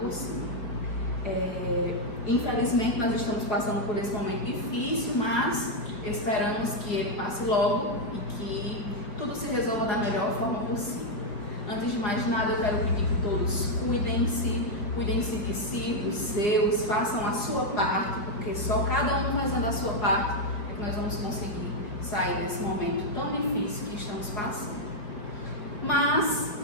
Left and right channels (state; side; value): late; right; 5.2 ms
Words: cima. Infelizmente nós estamos passando por esse momento difícil, mas esperamos que ele passe logo e que tudo se resolva da melhor forma possível. Antes de mais nada, eu quero pedir que todos cuidem-se de si, dos seus, façam a sua parte, porque só cada um fazendo a sua parte é que nós vamos conseguir sair desse momento tão difícil que estamos passando. Mas